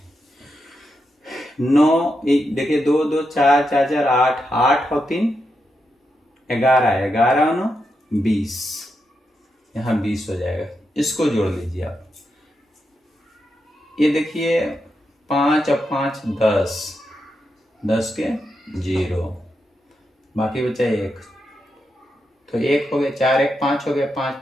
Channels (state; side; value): normal; both; correlation 0.85